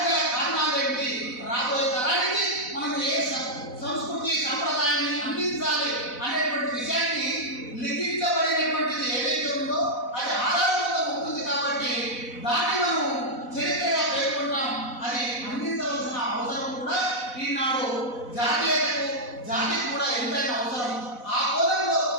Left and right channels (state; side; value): late; right; 4.0 ms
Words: గల కారణాలు ఏంటి, రాబోయే తరానికి మనం ఏ సంస్కృతి సంప్రదాయాన్ని అందించాలి అనేటువంటి విషయాన్ని లిఖించబడినటువంటిది ఏదైతే ఉందో అది ఆధారంగా ఉంటుంది. కాబట్టి దాన్ని మనం చరిత్రగా పేర్కొంటాం. అది అందించవలసిన అవసరం కూడా ఈనాడు జాతికి కూడా ఎంతైనా అవసరం. ఆ కోణంలో